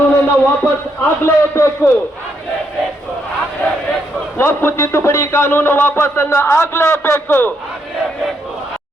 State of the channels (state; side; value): normal; both; correlation 0.77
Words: ವಾಪಸ್ ಆಗ್ಲೇಬೇಕು. ವಕ್ಫ್ ತಿದ್ದುಪಡಿ ಕಾನೂನು ವಾಪಸ್ಸನ್ನ ಆಗ್ಲೇಬೇಕು.